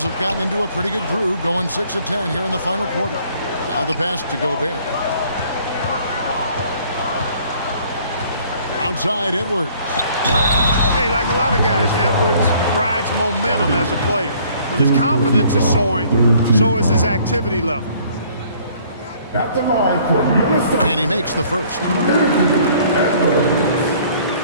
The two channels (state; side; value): inverted; both; correlation -0.58